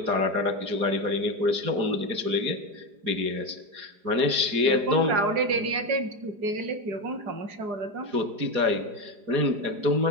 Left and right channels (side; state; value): left; late; 4.9 ms